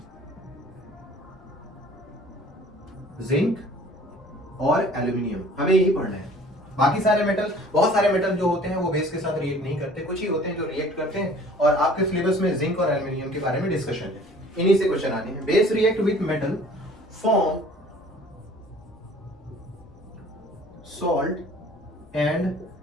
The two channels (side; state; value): left; noise; rumble, 26 dB below the sound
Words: जिंक और एल्यूमिनियम, हमें यही पढ़ना है। बाकी सारे मेटल, बहुत सारे मेटल जो होते हैं वो बेस के साथ रिएक्ट नहीं करते, कुछ ही होते हैं जो रिएक्ट करते हैं, और आपके सिलेबस में जिंक और एल्यूमिनियम के बारे में डिस्कशन है, इन्हीं से क्वेश्चन आने हैं। Base react with metal form salt and